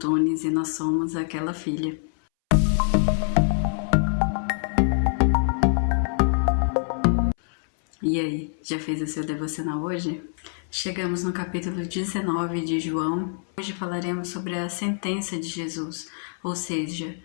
e nós somos Aquela Filha. E aí, já fez o seu devocional hoje? Chegamos no capítulo 19 de João. Hoje falaremos sobre a sentença de Jesus, ou seja,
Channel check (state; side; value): silent; right; 62 dB below the other